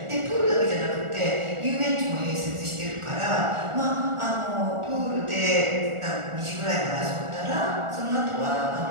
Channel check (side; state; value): left; late; 1.4 ms